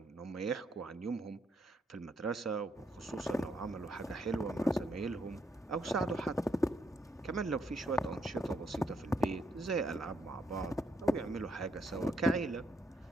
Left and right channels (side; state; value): both; normal; correlation 0.75